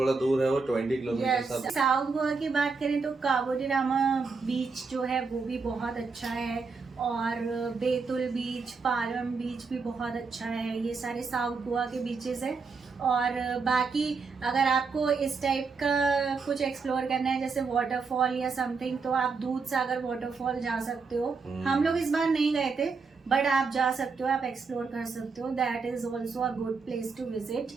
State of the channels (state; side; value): quieter; left; 4.8 dB